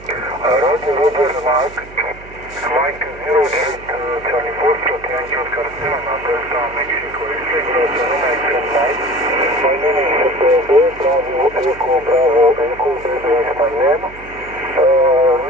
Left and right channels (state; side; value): noise; right; hum, 19 dB below the sound